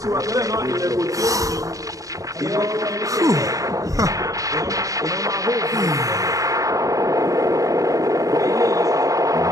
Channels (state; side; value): late; left; 0.16 ms